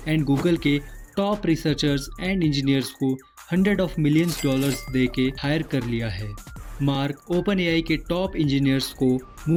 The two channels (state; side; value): identical; both; correlation 1.00